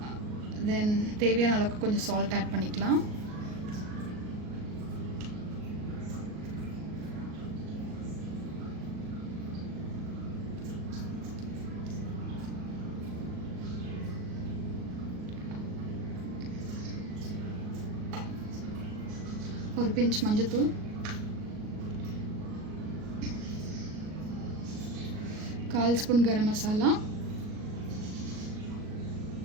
தென் தேவையான அளவுக்கு கொஞ்சம் சால்ட் ஆட் பண்ணிக்கலாம். ஒரு பிஞ்ச் மஞ்சத்தூள், கால் ஸ்பூன் கரம் மசாலா,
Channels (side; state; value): left; late; 38 ms